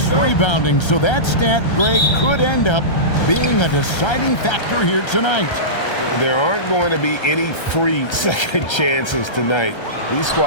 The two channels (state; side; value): late; right; 1.3 ms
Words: rebounding, so that stat, Greg, could end up being a deciding factor here tonight. There aren't going to be any free second chances tonight. These